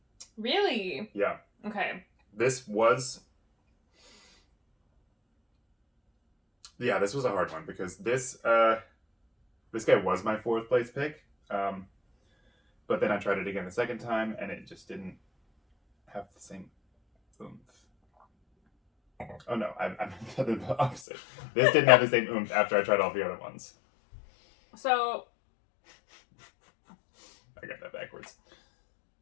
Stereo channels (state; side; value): drops out; right; at 21.0 s